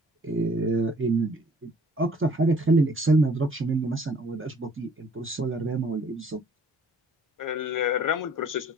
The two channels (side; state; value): both; normal; correlation 0.56